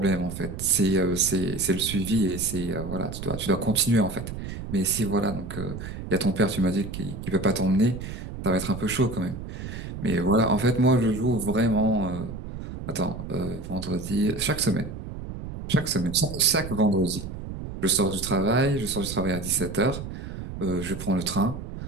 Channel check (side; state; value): right; noise; rumble, 9 dB below the sound